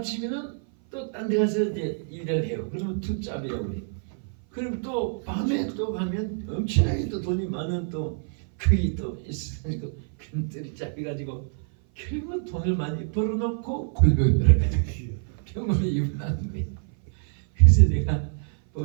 또 딴 데 가서 이제 일을 해요. 그러면 투잡이라고 해요. 그럼 또 밤에 또 가면 엄청나게 또 돈이 많은 또 그게 또 있으니까 큰들이 잡혀가지고 결국 돈을 많이 벌어놓고 골병을 해가지고 병원에 입원하는 거예요. 그래서 내가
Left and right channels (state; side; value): silent; left; 56 dB below the other